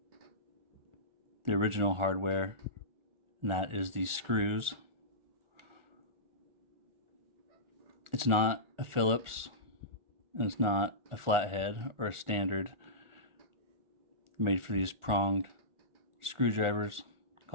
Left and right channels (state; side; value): late; left; 1.4 ms